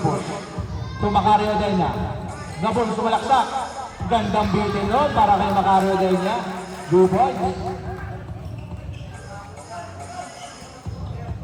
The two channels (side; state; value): both; identical; correlation 1.00